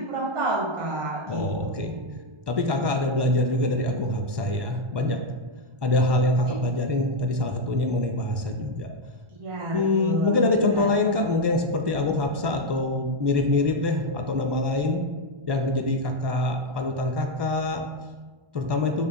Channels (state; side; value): late; left; 1.1 ms